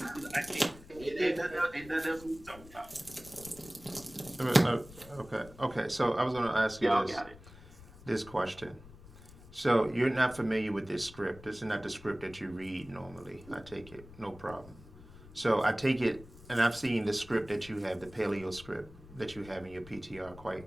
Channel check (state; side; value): noise; left; rumble, 19 dB below the sound